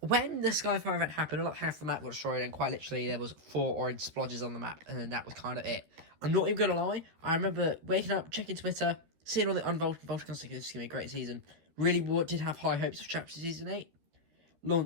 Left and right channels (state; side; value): late; left; 13 ms